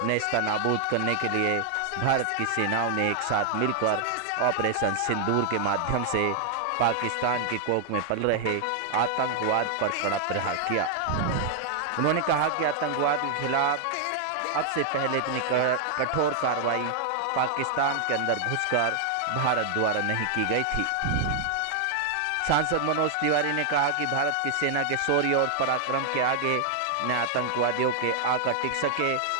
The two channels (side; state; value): both; different; correlation 0.00